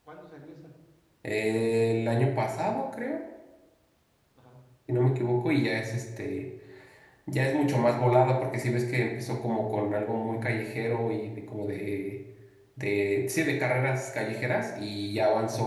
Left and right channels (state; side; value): identical; both; correlation 1.00